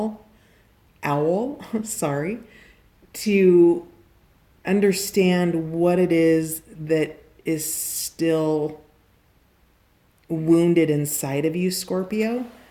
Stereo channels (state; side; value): identical; both; correlation 1.00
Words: sorry, to understand what it is that is still wounded inside of you, Scorpio,